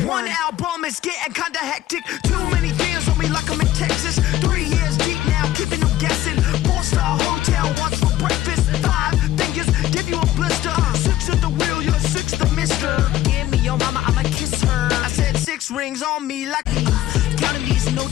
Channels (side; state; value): right; quieter; 14.1 dB